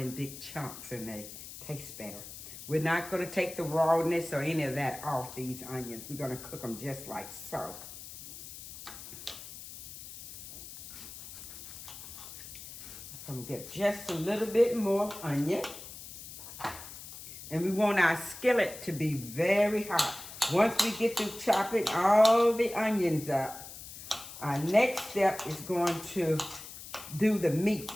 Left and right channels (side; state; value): left; noise; hiss, 13 dB below the sound